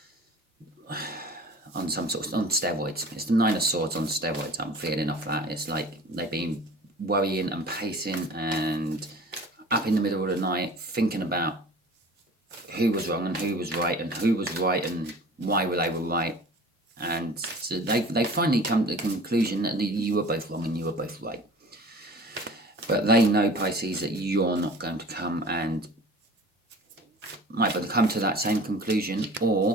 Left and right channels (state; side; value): normal; both; correlation 0.42